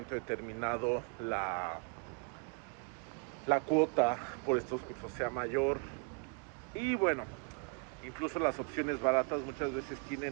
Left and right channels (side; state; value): left; quieter; 35.0 dB